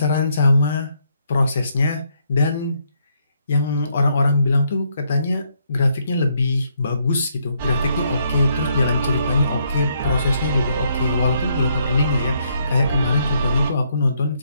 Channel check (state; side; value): inverted; both; correlation -0.73